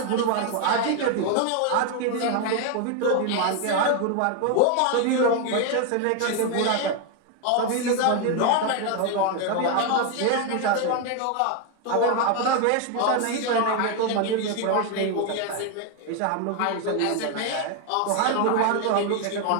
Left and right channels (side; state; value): both; different; correlation 0.01